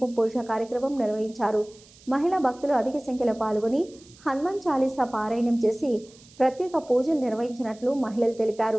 పూజ కార్యక్రమం నిర్వహించారు. మహిళా భక్తులు అధిక సంఖ్యలో పాల్గొని హనుమాన్ చాలీసా పారాయణం చేసి ప్రత్యేక పూజలు నిర్వహించినట్లు మహిళలు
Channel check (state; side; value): noise; right; hiss, 25 dB below the sound